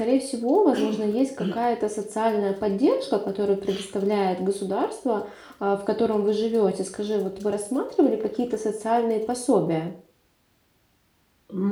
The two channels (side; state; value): both; identical; correlation 1.00